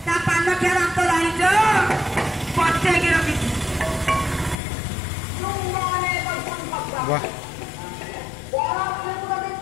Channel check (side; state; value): right; drops out; at 4.5 s